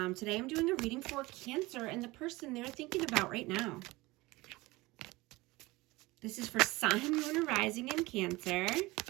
Today I'm doing a reading for Cancer and the person they're thinking about right now. This is for Sun, Moon, and Rising in Cancer.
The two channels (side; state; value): left; quieter; 21.3 dB